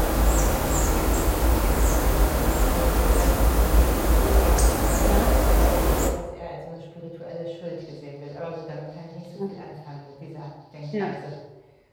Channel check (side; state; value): both; identical; correlation 1.00